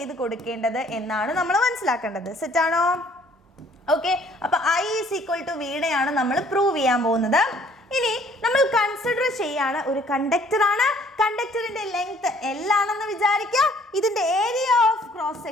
കൊടുക്കേണ്ടത് എന്നാണ് നമ്മൾ മനസ്സിലാക്കേണ്ടത്. സെറ്റ് ആണോ? ഓക്കെ, അപ്പൊ I is equal to വീണയാണ് നമ്മൾ പ്രൂവ് ചെയ്യാൻ പോകുന്നത്. ഇനി നമ്മൾ കൺസിഡർ ചെയ്യാണ് ഒരു കണ്ടക്ടർ ആണ്. കണ്ടക്ടറിന്റെ ലെങ്ത് L ആണെന്ന് വിചാരിക്കുക. ഇതിന്റെ ഏരിയ ഓഫ് ക്രോസ്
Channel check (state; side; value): normal; both; correlation 0.59